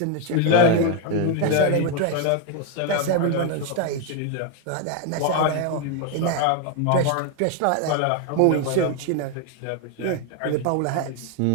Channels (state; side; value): different; both; correlation 0.01